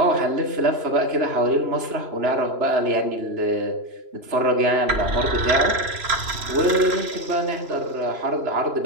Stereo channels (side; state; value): left; late; 3.0 ms